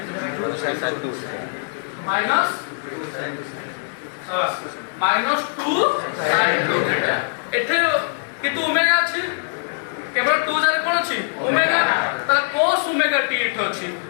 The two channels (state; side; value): silent; right; 64 dB below the other